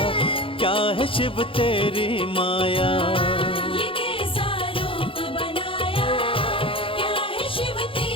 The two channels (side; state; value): right; late; 0.26 ms